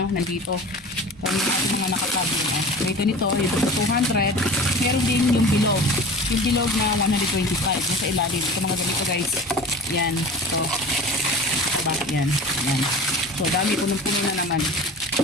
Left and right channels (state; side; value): normal; both; correlation 0.38